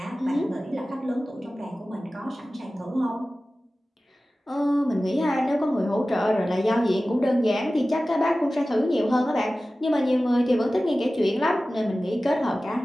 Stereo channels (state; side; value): normal; both; correlation 0.96